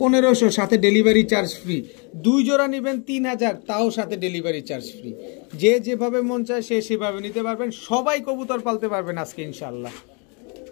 1500, সাথে ডেলিভারি চার্জ ফ্রি। 2 জোড়া নিবেন 3000, তাও সাথে ডেলিভারি চার্জ ফ্রি। যে যেভাবে মন চায় সে সেভাবে নিতে পারবেন। সবাই কবুতর পালতে পারবেন আজকে ইনশাআল্লাহ।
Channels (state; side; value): quieter; right; 34.2 dB